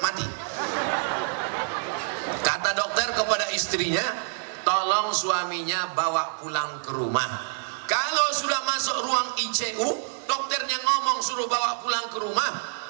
mati. Kata dokter kepada istrinya, tolong suaminya bawa pulang ke rumah. Kalau sudah masuk ruang ICU, dokternya ngomong suruh bawa pulang ke rumah,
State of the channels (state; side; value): silent; left; 60 dB below the other